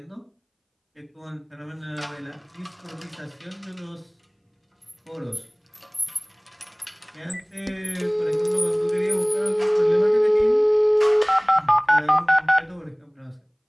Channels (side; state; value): both; identical; correlation 1.00